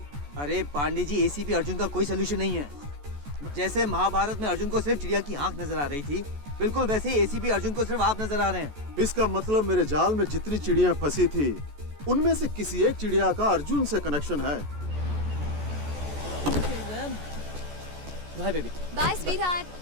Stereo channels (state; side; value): late; left; 14 ms